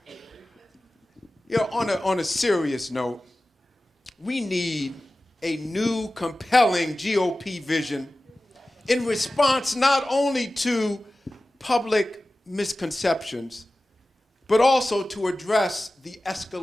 On a serious note, we need a new, compelling GOP vision in response not only to public misconceptions, but also to address the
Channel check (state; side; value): normal; both; correlation 0.96